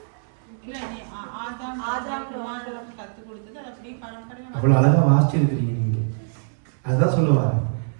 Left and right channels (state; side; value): silent; left; 63 dB below the other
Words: அவ்வளவு அழகா வாசிச்சிருக்கிறீங்க நீங்க. அதுதான் சொல்லுவாரு.